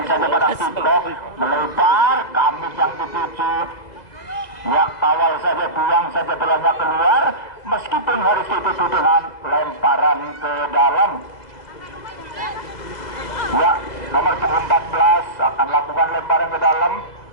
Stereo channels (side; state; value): right; late; 1.9 ms